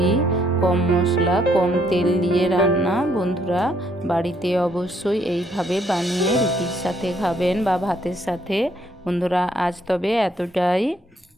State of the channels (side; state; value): both; normal; correlation 0.69